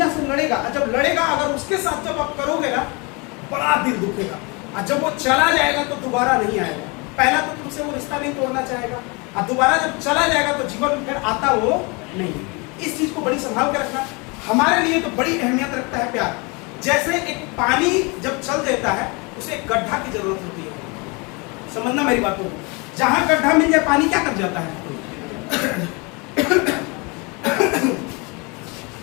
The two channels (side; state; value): right; quieter; 29.3 dB